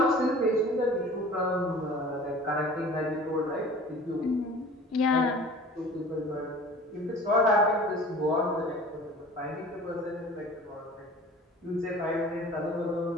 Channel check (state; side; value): normal; both; correlation 0.43